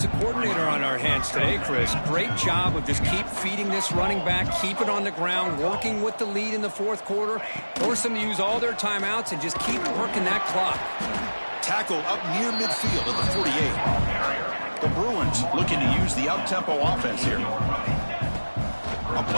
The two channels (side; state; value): both; inverted; correlation -1.00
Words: coordinator on our hands today, Chris. Great job of just keep feeding this running back, keep it on the ground, working with the lead in the fourth quarter, force them to use all their timeouts, and just keep working that clock. Tackle up near midfield at the 48. The Bruins looking to use the up-tempo offense here. A